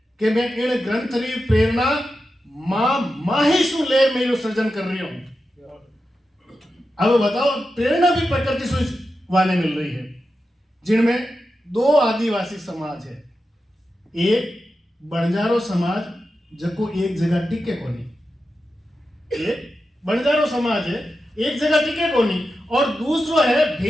कि मैं इन ग्रंथ री प्रेरणा मां मैं यो सृजन कर रही हूं। अब बताओ, प्रेरणा भी प्रकृति से वाले मिल रही है, जिनमें दो आदिवासी समाज है। एक बंजारो समाज जको एक जगह टिके कोनी, एक बंजारो समाज है एक जगह टिके कोनी, और दूसरो है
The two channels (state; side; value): normal; both; correlation 0.90